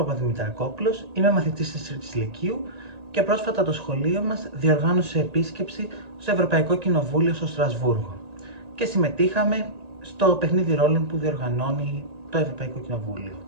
είμαι μαθητής της Τρίτης Λυκείου και πρόσφατα το σχολείο μας διοργάνωσε επίσκεψη στο Ευρωπαϊκό Κοινοβούλιο στο Στρασβούργο και συμμετείχαμε στο παιχνίδι ρόλων που διοργανώνει το Ευρωπαϊκό Κοινοβούλιο.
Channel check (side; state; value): left; late; 1.8 ms